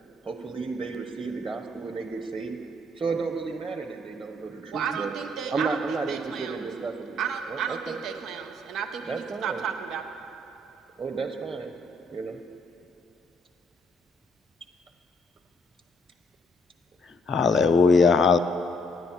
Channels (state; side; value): normal; both; correlation 0.68